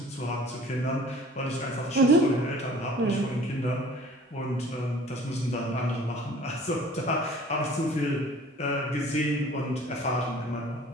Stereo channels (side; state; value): both; normal; correlation 0.49